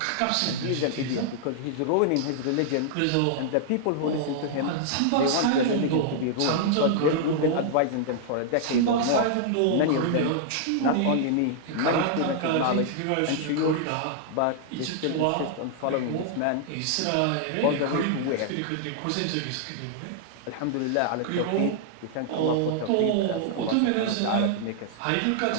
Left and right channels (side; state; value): both; different; correlation -0.01